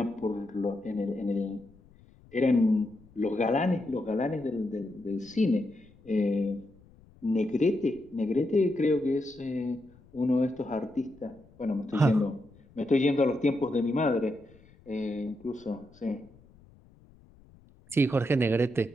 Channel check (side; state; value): left; noise; rumble, 26 dB below the sound